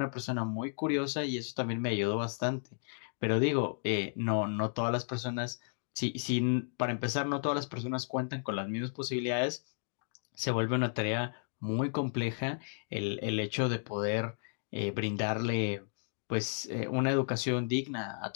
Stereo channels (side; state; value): right; silent; digital silence